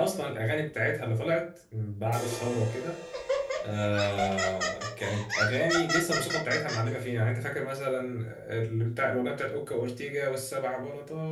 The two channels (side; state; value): both; identical; correlation 1.00